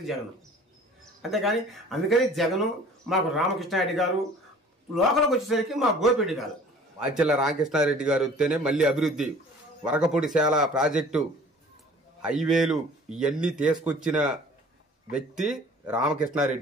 జగన్. అంతేగాని అందుకని జగన్ మాకు రామకృష్ణారెడ్డి గారు, లోకల్కి వచ్చేసరికి మా గోపిరెడ్డి గారు. మాచెల్ల రామకృష్ణారెడ్డి గారు వస్తేనే మళ్ళీ అభివృద్ధి, వరకపూడిశాల ప్రాజెక్టు, హైవేలు ఇవన్నీ తీసుకొచ్చిన వ్యక్తి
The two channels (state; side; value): normal; both; correlation 0.49